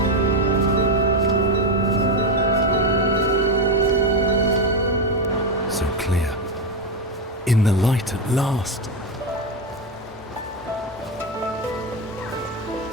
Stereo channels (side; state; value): both; normal; correlation 0.10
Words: So clear. In the light at last.